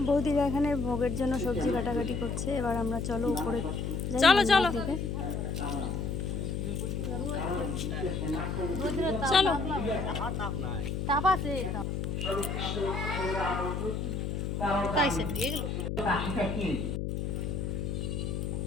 বৌদিরা এখানে ভোগের জন্য সবজি কাটাকাটি করছে। এবার আমরা চলো উপরে, চলো চলো চলো।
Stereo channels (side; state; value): left; noise; hum, 2 dB below the sound